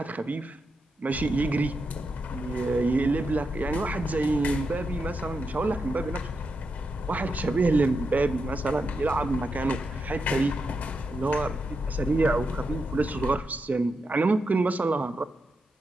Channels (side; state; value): both; normal; correlation 0.85